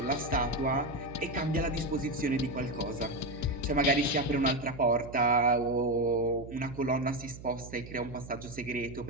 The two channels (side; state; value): right; noise; hum, 14 dB below the sound